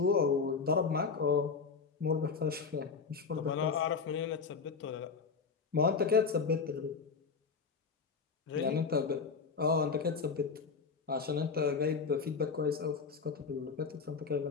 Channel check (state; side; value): quieter; right; 5.2 dB